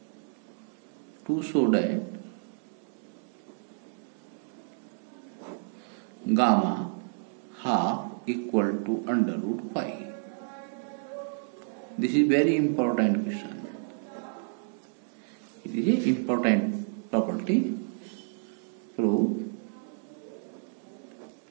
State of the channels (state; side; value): silent; left; digital silence